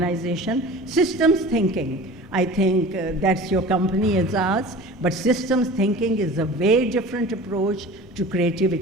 Systems thinking, I think that's your company, Aezaz, but systems thinking is a very different approach to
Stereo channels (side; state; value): both; normal; correlation 0.39